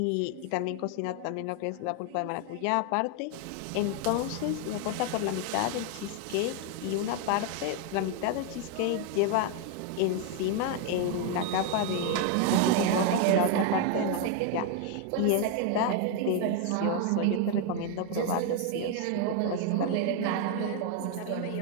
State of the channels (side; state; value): both; different; correlation 0.01